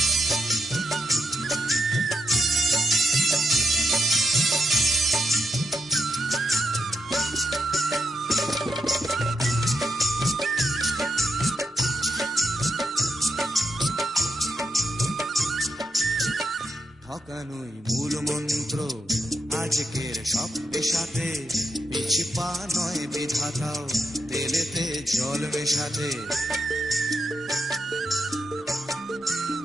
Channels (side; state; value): both; normal; correlation 0.81